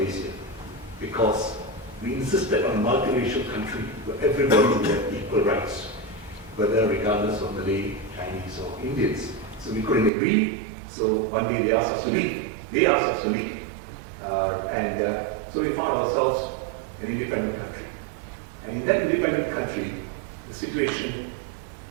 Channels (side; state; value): left; drops out; at 10.1 s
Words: because we insisted on a multiracial country where everybody would have equal rights, whether regardless of Malay, Chinese, or Indians. So we couldn't agree, so one day they asked us to leave. So we found ourselves an independent country. And in that independent country, the situation,